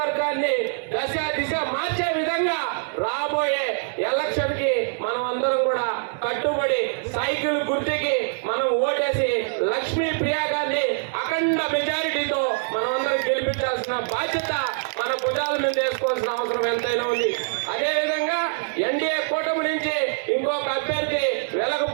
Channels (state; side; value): silent; left; digital silence